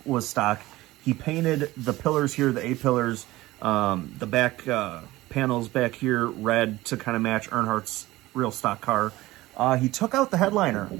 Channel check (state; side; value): quieter; left; 18.1 dB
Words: was stock. He painted the pillars here, the A-pillars, the back panels back here red to kind of match Earnhardt's real stock car. He took out the headliner,